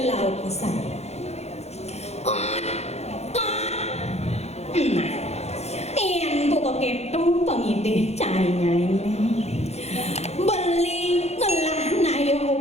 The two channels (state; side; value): late; right; 0.31 ms